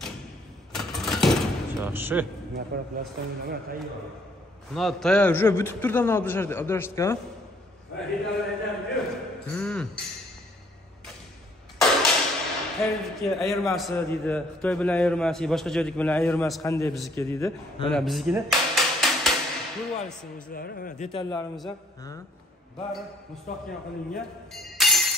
Yaxshi. Mana plastiklar tayyor. Mana tayyor, уже бүтүп турду мына Abdurashid aka. Mana detallardan Xitoydagi ayirmasi deydi, Xitoy bilan ayirmasi, boshqa joydagi bilan ayirmasi qanday bizniki deydi. Mana biznikini ko'rib olasiz o'zlari. Mana detallarimiz ham bari mustahkam qilingan.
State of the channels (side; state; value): both; normal; correlation 0.63